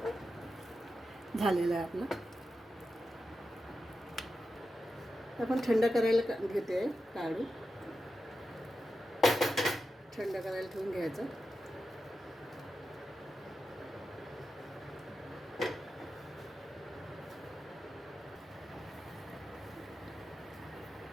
झालेलं आहे आपलं. आपण थंड करायला घेते. काढू थंड करायला ठेवून घ्यायचं.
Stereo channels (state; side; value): normal; both; correlation 0.90